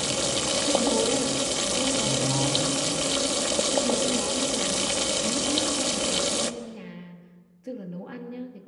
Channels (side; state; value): both; identical; correlation 1.00